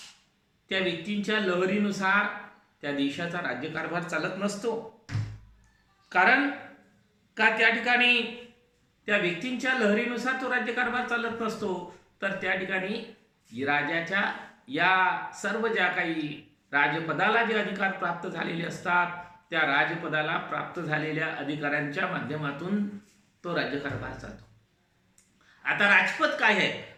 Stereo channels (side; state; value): both; identical; correlation 1.00